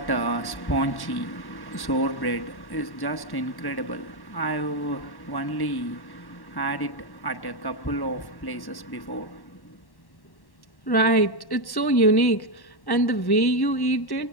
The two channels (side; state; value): right; late; 1.1 ms